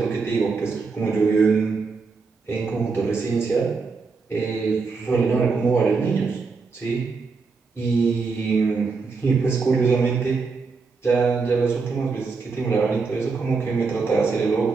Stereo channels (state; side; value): quieter; left; 4.6 dB